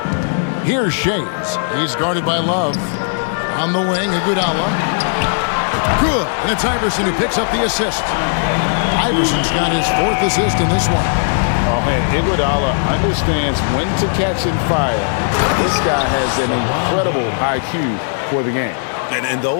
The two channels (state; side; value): silent; right; digital silence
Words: Here's Shays. He's guarded by Love. On the wing, Iguodala. Good. And it's Iverson who picks up the assist. Iverson's got his 4th assist in this one. Oh, man, Iguodala understands when to catch and fire. This guy has an incredible IQ for the game. And